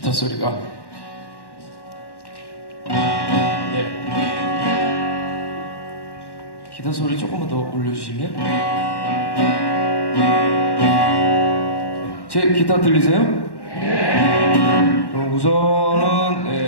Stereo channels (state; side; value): late; right; 1.1 ms